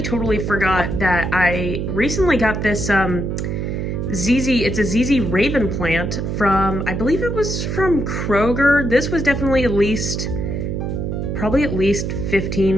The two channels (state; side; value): noise; right; hum, 2 dB below the sound